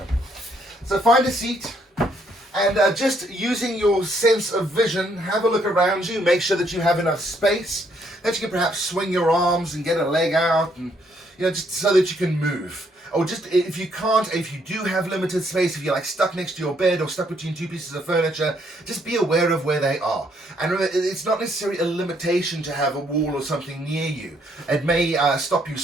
So find a seat and just using your sense of vision, have a look around you. Make sure that you have enough space, that you can perhaps swing your arms and get a leg out, and just so that you can move. Or just if you can't, if you do have limited space, if you're like stuck next to your bed or stuck between two pieces of furniture, just be aware of where they are. And remember, it's not necessarily a limitation to have a wall or something near you. It may stop you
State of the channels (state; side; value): normal; both; correlation 0.70